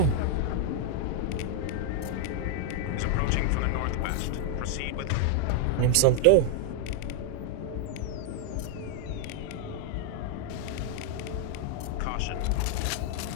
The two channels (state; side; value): different; both; correlation 0.00